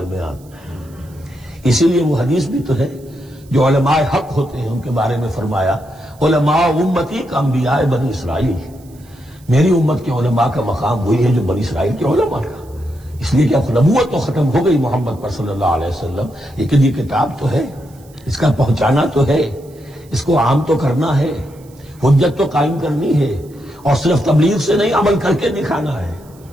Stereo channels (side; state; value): right; noise; hiss, 28 dB below the sound